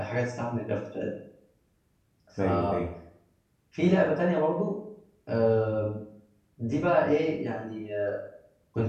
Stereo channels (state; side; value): identical; both; correlation 1.00